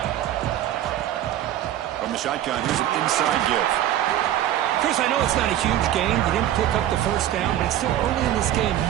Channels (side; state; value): left; quieter; 12.2 dB